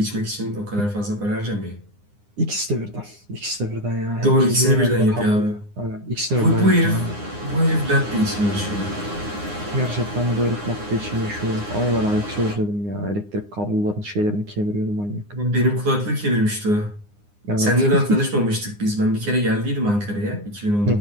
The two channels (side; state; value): left; late; 9.8 ms